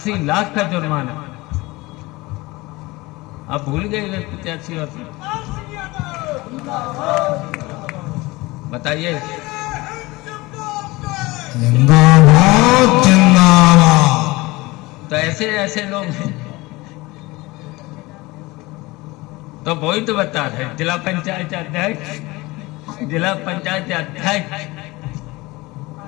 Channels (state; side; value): quieter; right; 21.8 dB